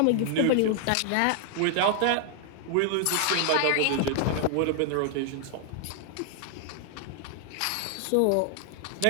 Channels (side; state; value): both; different; correlation 0.00